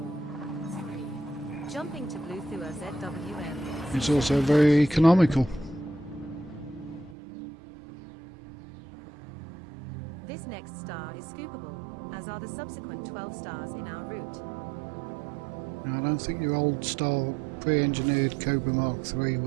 Jumping to Blue Thua ZWM. It's also very economical. This next star is scoopable, as are the subsequent 12 stars in our route. Now, I don't think your old style pre-engineered Cobra Mark III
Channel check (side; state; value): left; drops out; at 7.2 s